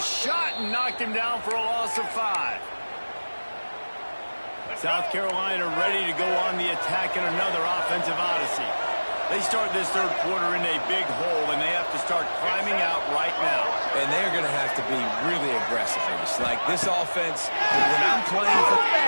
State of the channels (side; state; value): both; inverted; correlation -1.00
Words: and knocked him down for a loss of 5. South Carolina ready to go on the attack in another offensive odyssey. They start this third quarter in a big hole, and they have to start climbing out right now. And they're going to have to be really aggressive here. It's like this offense, when I'm playing for...